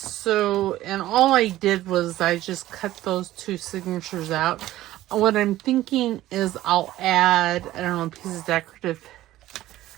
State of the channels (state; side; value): quieter; left; 15.0 dB